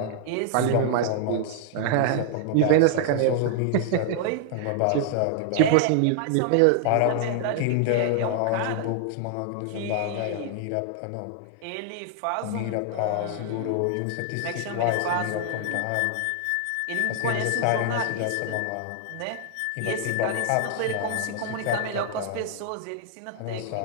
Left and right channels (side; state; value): both; different; correlation -0.01